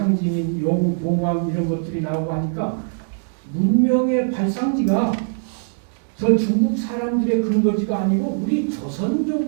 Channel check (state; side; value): silent; left; digital silence